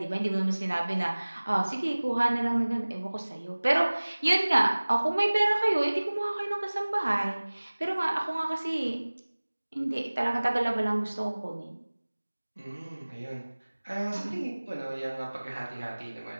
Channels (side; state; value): both; inverted; correlation -1.00